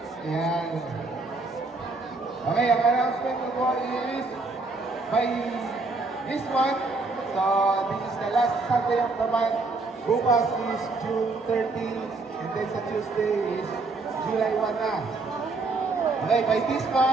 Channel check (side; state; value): left; quieter; 3.6 dB